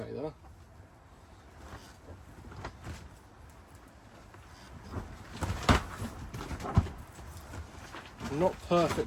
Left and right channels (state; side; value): identical; both; correlation 1.00